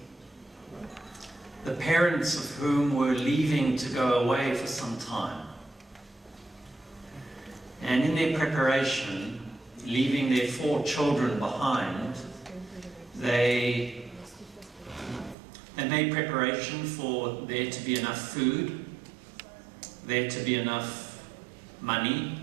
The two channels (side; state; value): left; drops out; at 15.4 s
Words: the parents of whom were leaving to go away for some time. And in their preparation, leaving their 4 children behind, they made preparation for there to be enough food, there to be enough money.